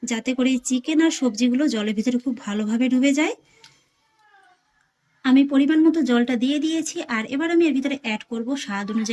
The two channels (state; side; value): identical; both; correlation 1.00